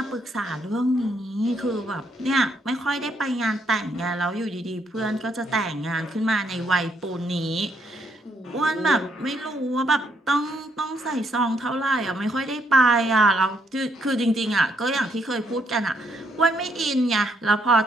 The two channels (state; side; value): normal; both; correlation 0.73